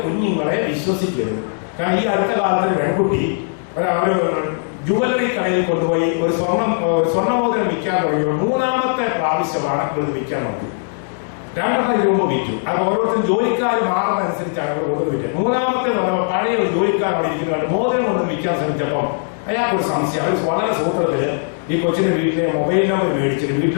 കുഞ്ഞുങ്ങളെ വിശ്വസിക്കരുത്. കാരണം ഈ അടുത്ത കാലത്തൊരു പെൺകുട്ടി ഒരു ജുവലറി കടയിൽ കൊണ്ടുപോയി ഒരു സ്വർണ്ണമോതിരം വിൽക്കാൻ തുടങ്ങിയപ്പോൾ 3ാമത്തെ പ്രാവശ്യമാണ് ഇവിടുന്ന് വിൽക്കാൻ നോക്കി. 2 മുമ്പ് വിറ്റു. അപ്പോൾ ഓരോരുത്തരും ജോലിക്കാർ മാറുന്നതനുസരിച്ചാണ് ഇവിടെ കൊണ്ടുവന്ന് വിറ്റത്. 3ാമത്തെ പറഞ്ഞപ്പോൾ പഴയ ഒരു ജോലിക്കാരൻ അവിടെ ഇരിക്കുന്നത് മോതിരം കൊണ്ടുവന്ന് വിൽക്കാൻ ശ്രമിച്ചപ്പം അയാൾക്കൊരു സംശയം. അവർ വളരെ സൂത്രത്തില് ഈ കൊച്ചിന്റെ വീട്ടിലെ മൊബൈൽ നമ്പർ മേടിച്ചിട്ട്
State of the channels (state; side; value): silent; right; digital silence